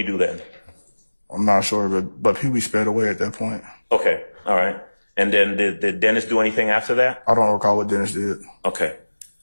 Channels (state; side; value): inverted; both; correlation -1.00